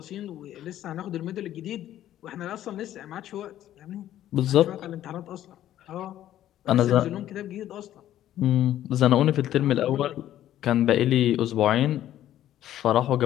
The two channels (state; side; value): quieter; right; 12.4 dB